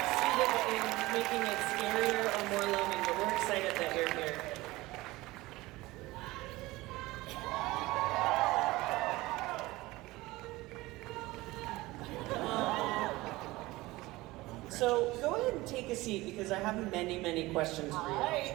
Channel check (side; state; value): left; quieter; 19.8 dB